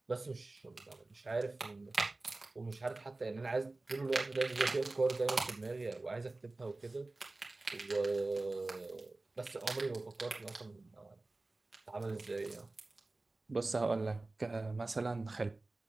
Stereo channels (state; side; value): quieter; left; 3.1 dB